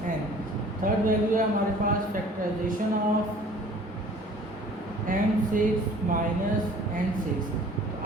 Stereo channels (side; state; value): both; normal; correlation 0.50